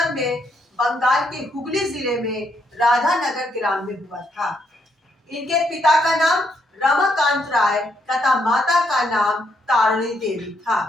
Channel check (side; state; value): both; normal; correlation 0.75